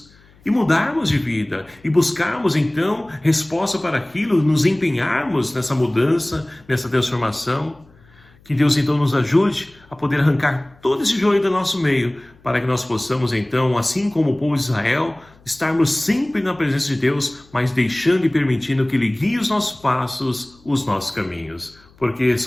e mudarmos de vida e buscarmos então resposta para aquilo, nos empenharmos nessa mudança, nessa transformação. Que Deus então nos ajude a poder arrancar todo esse joio do nosso meio, para que nós possamos então, assim como o povo de Israel, estarmos sempre na presença de Deus, mas deixando e permitindo que Ele guie os nossos passos, os nossos caminhos. Porque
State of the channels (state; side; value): noise; left; hum, 28 dB below the sound